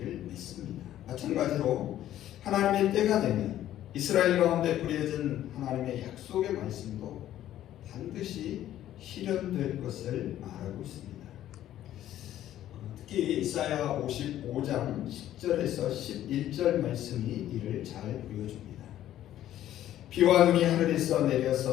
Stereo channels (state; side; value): quieter; right; 12.5 dB